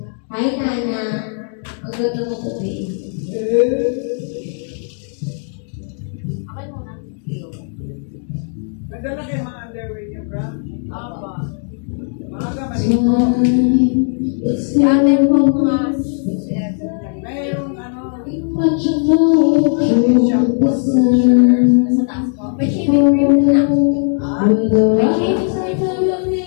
Hi, Nana. Ang good mood today. Okay muna. Ganda lang kayo mga underwear niya, bro. Aba. Maaga, maligo. Ate po mga Mayroong ano, sa taas po. May shaving cream din na. May shaving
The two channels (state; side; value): silent; right; 56 dB below the other